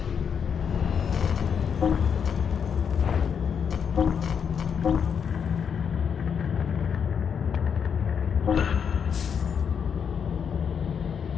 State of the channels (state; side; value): quieter; right; 7.2 dB